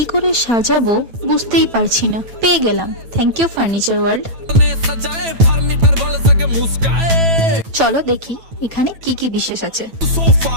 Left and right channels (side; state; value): left; late; 9.1 ms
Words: করে সাজাবো বুঝতেই পারছি না, পেয়ে গেলাম থ্যাংক ইউ ফার্নিচার ওয়ার্ল্ড। চলো দেখি এখানে কি কি বিশেষ আছে।